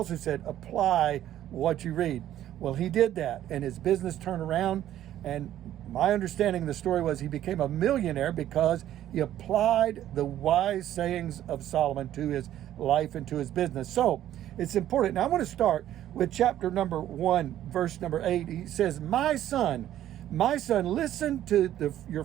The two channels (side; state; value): left; quieter; 12.2 dB